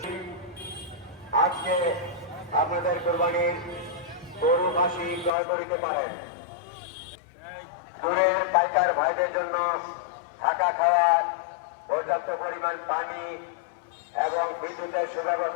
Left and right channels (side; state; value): right; drops out; at 5.3 s